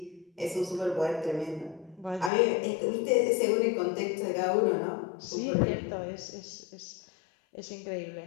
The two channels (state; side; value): drops out; right; at 2.3 s